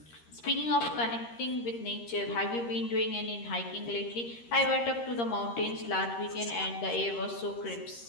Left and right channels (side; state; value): right; late; 13 ms